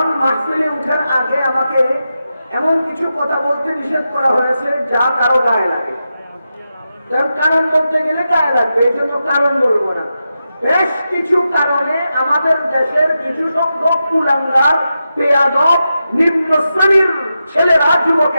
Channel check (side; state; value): both; inverted; correlation -0.89